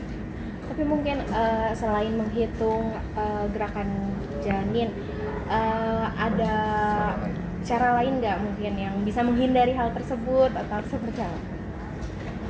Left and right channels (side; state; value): both; identical; correlation 1.00